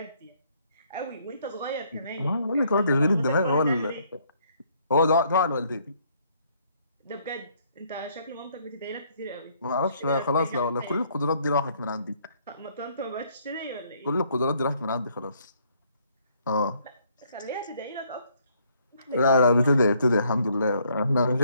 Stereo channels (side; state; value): both; inverted; correlation -0.67